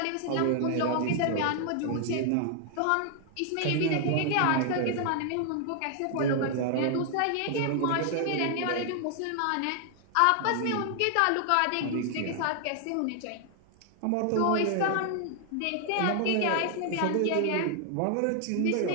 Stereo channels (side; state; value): both; different; correlation 0.00